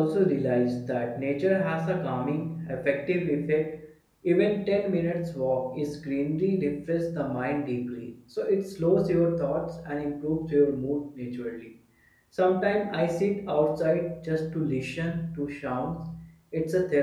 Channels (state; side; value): identical; both; correlation 1.00